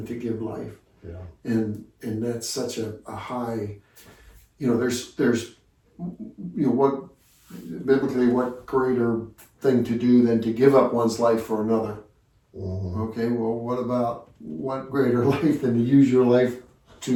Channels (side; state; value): both; identical; correlation 1.00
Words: to give life? And that's such a high, there's what biblically, what greater thing to do than to give up one's life for another? Okay, well, what greater life than to use your life